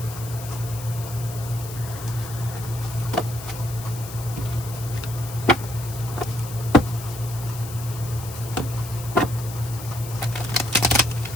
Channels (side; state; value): left; noise; hiss, 13 dB below the sound